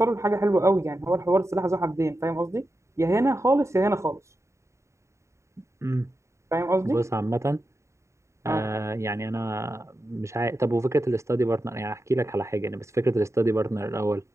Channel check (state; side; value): late; left; 0.14 ms